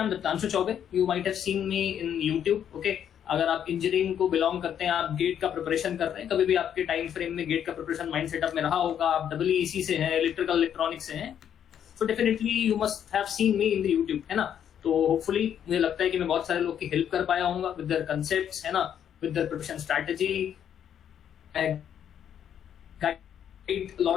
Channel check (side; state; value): right; quieter; 9.2 dB